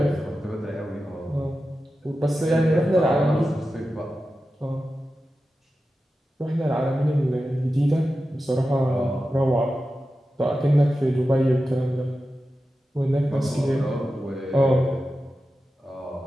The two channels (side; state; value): both; normal; correlation 0.92